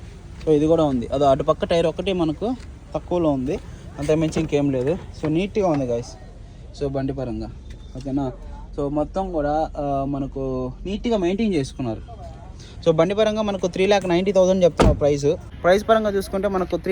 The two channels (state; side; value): identical; both; correlation 1.00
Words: సో ఇది కూడా ఉంది, అది అటుపక్క టైర్ ఒకటి మనకు తక్కువలో ఉంది, అంతకుమించి ఇంకేం లేదు. సో నీట్గా ఉంది గైస్, సో బండి పరంగా, ఓకేనా. సో మొత్తం కూడా మనకు నీట్గా మెయింటైన్ చేసుకున్నారు. సో బండి పరంగా మనకు 3,90,000 చెప్తున్నారు ప్రైస్ పరంగా చూసుకుంటే మనకు